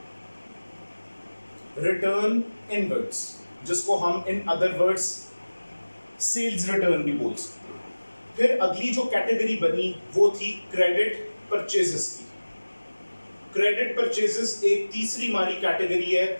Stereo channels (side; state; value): both; inverted; correlation -1.00